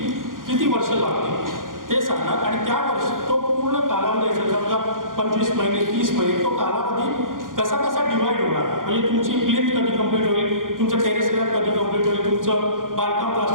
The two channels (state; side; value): late; left; 0.90 ms